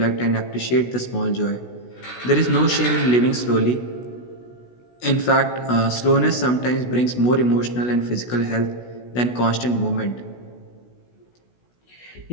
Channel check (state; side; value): late; right; 16 ms